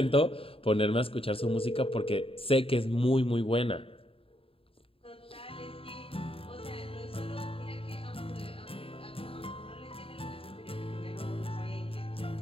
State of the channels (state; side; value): late; right; 0.27 ms